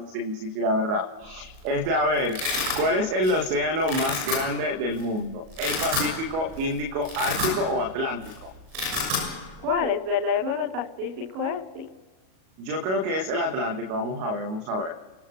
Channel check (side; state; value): left; late; 38 ms